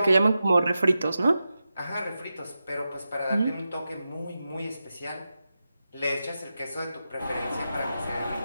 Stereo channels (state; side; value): inverted; both; correlation -0.91